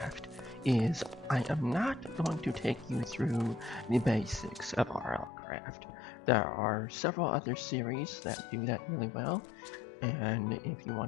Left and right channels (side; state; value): right; drops out; at 5.3 s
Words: is I am not going to take you through the basics of RLCraft. There are several other series that do that really well, and if you